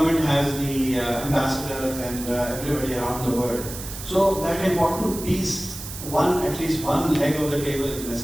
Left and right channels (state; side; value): noise; right; hiss, 10 dB below the sound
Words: has the ambassadors and everybody around the world. So that important piece, at least one leg of the table is